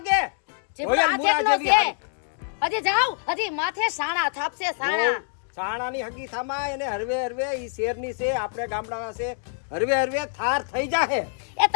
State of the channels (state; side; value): silent; right; 61 dB below the other